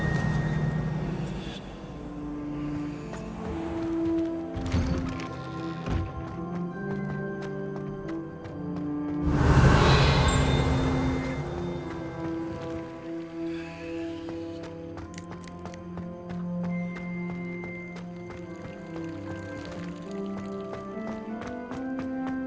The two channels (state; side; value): identical; both; correlation 1.00